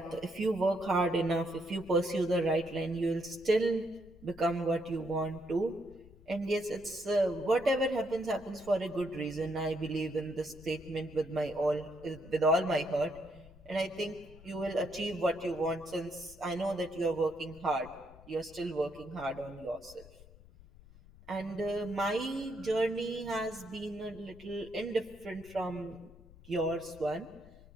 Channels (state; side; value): noise; left; rumble, 21 dB below the sound